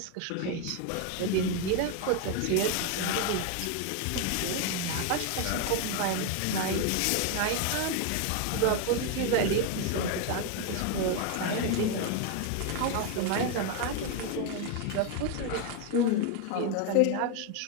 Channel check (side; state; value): both; different; correlation 0.01